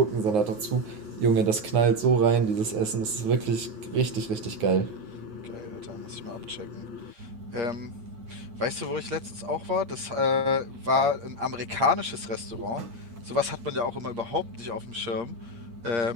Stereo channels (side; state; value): left; late; 9.6 ms